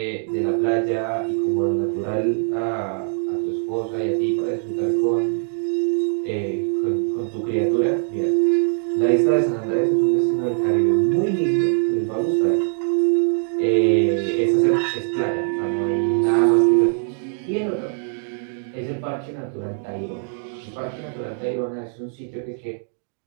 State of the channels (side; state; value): left; silent; digital silence